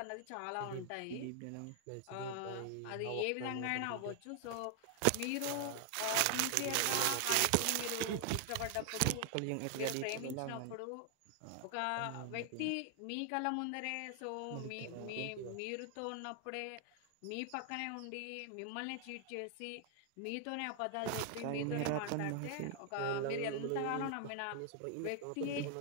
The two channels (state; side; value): different; both; correlation 0.00